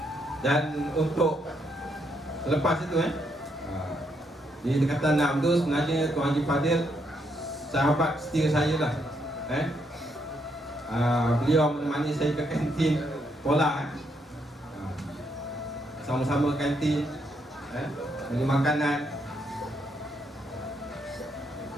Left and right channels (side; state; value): both; normal; correlation 0.76